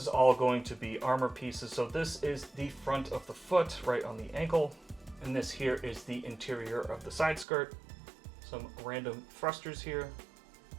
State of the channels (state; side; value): drops out; left; at 7.5 s